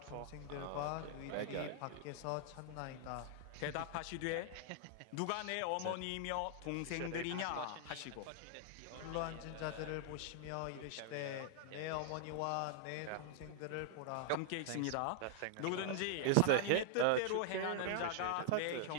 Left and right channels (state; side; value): different; both; correlation -0.01